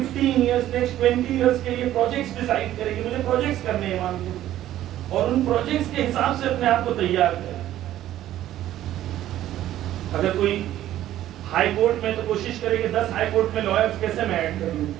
ایئرس، نیکسٹ 20 ایئرس کے لیے پروجیکٹس ڈیسائیڈ کرے کہ مجھے پروجیکٹس کرنے ہیں امام کے، اور ان پروجیکٹس کے حساب سے اپنے آپ کو تیار کرے. اگر کوئی ہائی کورٹ میں تو کوشش کرے کہ 10 ہائی کورٹ میں لائرز کیسے میں ایڈ کر لوں.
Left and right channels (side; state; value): left; quieter; 13.1 dB